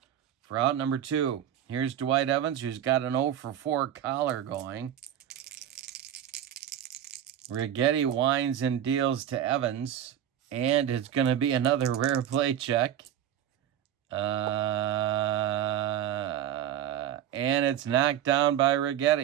for out number 2. Here's Dwight Evans, who's got an 0 for 4 collar going. Righetti winds and deals to Evans, and it's going to be another rare play check. And it's knocked down by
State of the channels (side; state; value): left; quieter; 10.5 dB